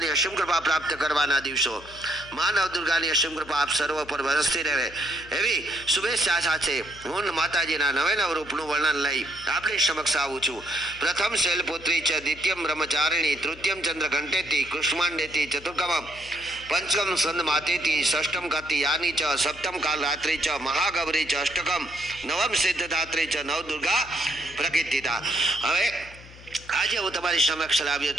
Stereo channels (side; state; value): left; noise; hum, 19 dB below the sound